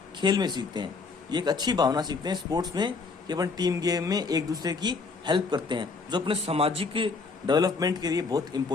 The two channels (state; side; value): quieter; right; 4.4 dB